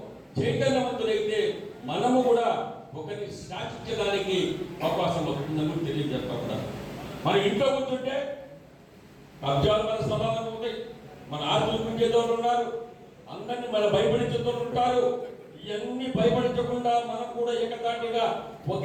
చైతన్యవంతులైతే మనము కూడా ఒకరిని శాసించడానికి అవకాశం వస్తుందని తెలియజేస్తా ఉన్నాను. మన ఇంట్లో కూర్చుంటే కబ్జాలు మన స్థలాలు ఉంటాయి, మన ఆస్తులు పెంచేదోళ్ళు ఉన్నారు, అందరినీ మన భయపడించేదోళ్ళు ఉంటారు. ఇవన్నీ భయపడించకుండా మనం కూడా ఏకతాటిగా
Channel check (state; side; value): identical; both; correlation 1.00